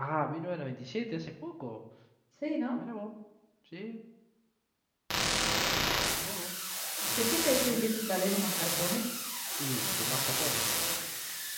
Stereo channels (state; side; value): identical; both; correlation 1.00